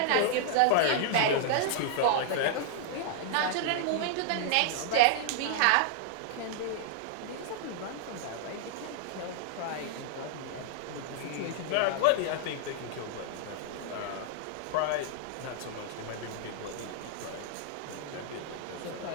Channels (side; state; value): both; different; correlation -0.01